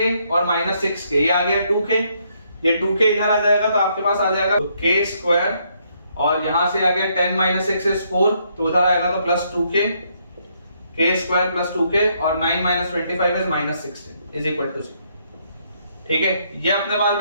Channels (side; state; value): both; inverted; correlation -0.72